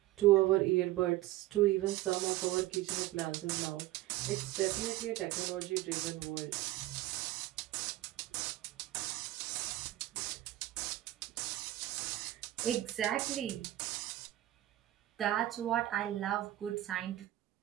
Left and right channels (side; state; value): left; quieter; 15.8 dB